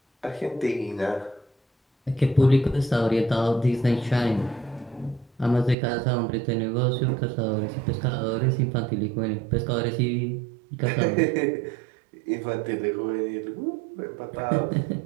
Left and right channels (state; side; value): drops out; left; at 5.8 s